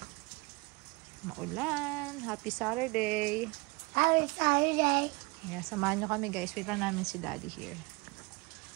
Maulan. Happy Saturday. Happy Saturday. Yeah, samahan nyo kami guys. Wait lang namin si Daddy here.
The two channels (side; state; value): left; quieter; 26.4 dB